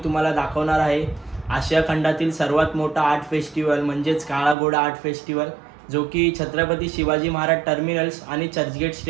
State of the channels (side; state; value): left; drops out; at 4.5 s